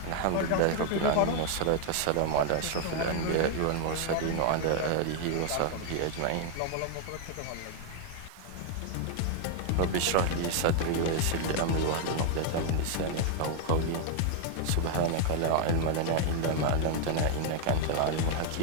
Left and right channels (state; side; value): different; both; correlation 0.00